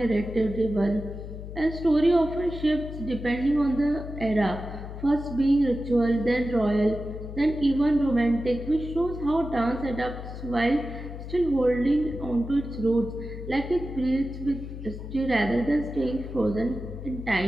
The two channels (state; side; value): noise; left; hum, 10 dB below the sound